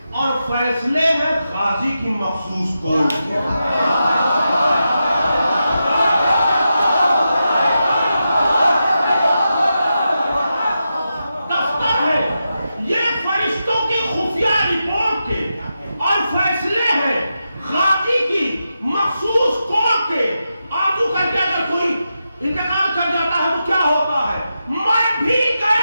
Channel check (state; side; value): inverted; both; correlation -0.88